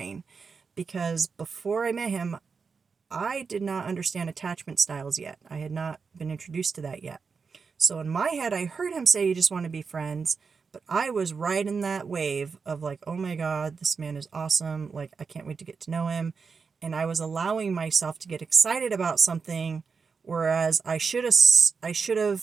because before I met him, I did not understand attachment styles yet. I had not been introduced to that yet. So in my head, I heard him say you just want to be friends, but I was right in that wave of like, oh my God, this man is awesome. Like, I can't wait to get to know him. And I was allowing myself to get excited about something, whereas I should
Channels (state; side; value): quieter; left; 5.3 dB